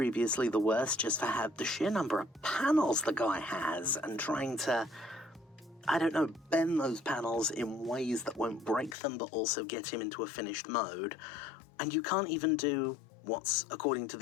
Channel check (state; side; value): drops out; right; at 9.0 s